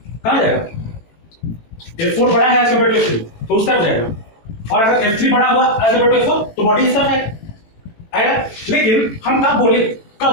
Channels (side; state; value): right; late; 18 ms